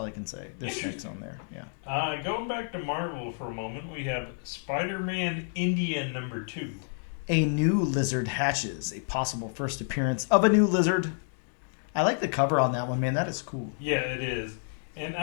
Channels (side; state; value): right; silent; digital silence